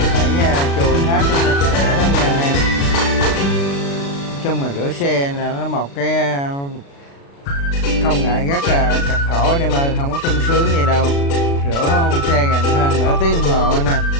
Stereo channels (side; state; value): right; late; 36 ms